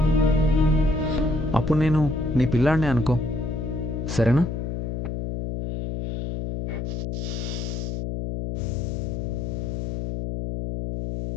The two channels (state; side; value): noise; left; hum, 3 dB below the sound